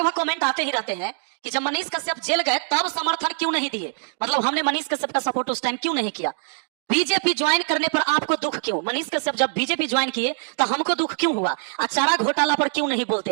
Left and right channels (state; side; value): silent; left; digital silence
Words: कमेंट आते ही रहते हैं कि जब मनीष कश्यप जेल गए तब समर्थन क्यों नहीं दिए, मतलब हमने मनीष कश्यप का सपोर्ट उस टाइम क्यों नहीं किया। बीजेपी ज्वाइन करने पर आपको दुख क्यों, मनीष कश्यप जब बीजेपी ज्वाइन किए तो हमको दुख क्यों हुआ, चारा घोटाला पर क्यों नहीं बोलते